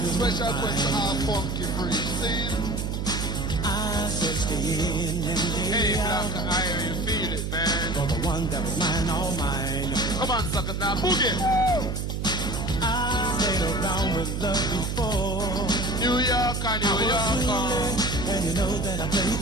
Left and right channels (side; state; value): right; noise; hum, 2 dB below the sound